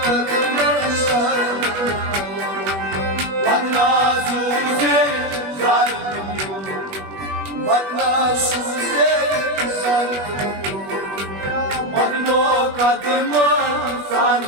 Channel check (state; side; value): late; left; 21 ms